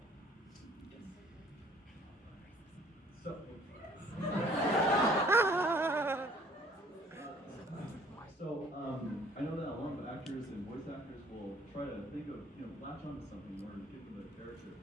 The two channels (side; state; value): both; normal; correlation 0.56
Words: I know that a lot of actors and voice actors will try to think of, latch onto something in order to get them a character.